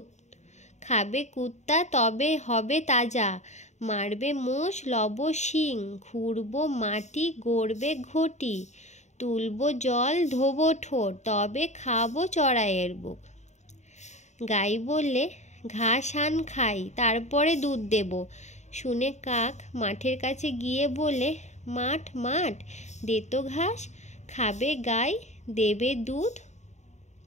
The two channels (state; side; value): late; right; 0.34 ms